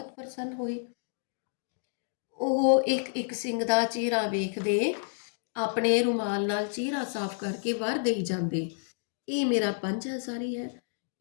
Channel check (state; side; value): silent; right; digital silence